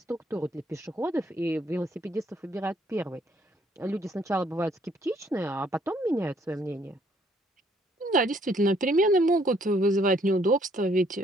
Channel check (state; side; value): normal; both; correlation 0.66